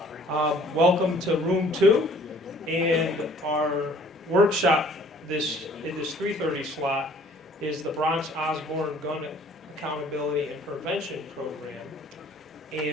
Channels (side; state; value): both; normal; correlation 0.55